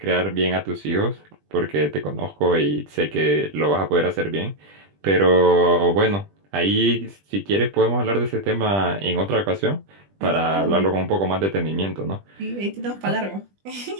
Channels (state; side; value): late; left; 20 ms